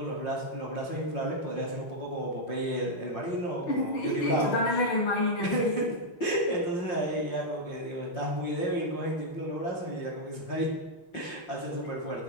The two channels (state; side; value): late; right; 5.6 ms